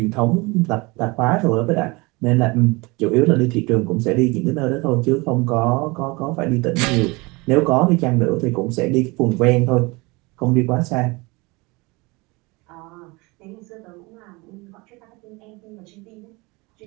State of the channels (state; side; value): quieter; left; 25.3 dB